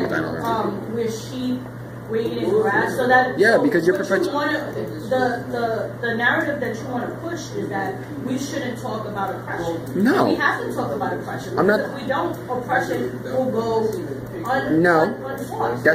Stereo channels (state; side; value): identical; both; correlation 1.00